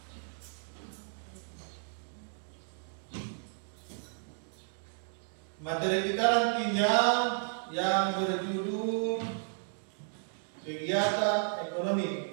Materi kita nantinya yang berjudul kegiatan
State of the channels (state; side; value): silent; left; 56 dB below the other